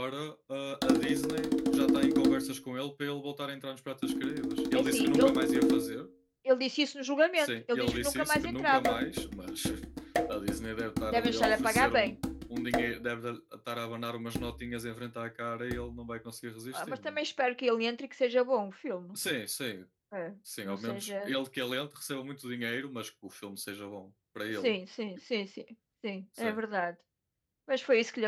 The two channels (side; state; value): both; identical; correlation 1.00